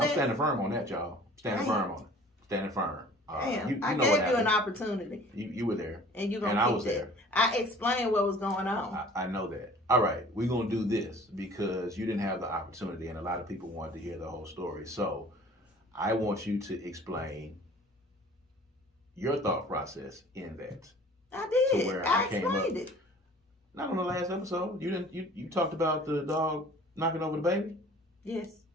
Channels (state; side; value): normal; both; correlation 0.49